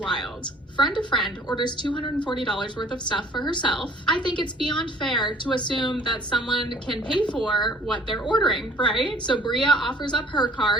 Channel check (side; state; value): both; normal; correlation 0.55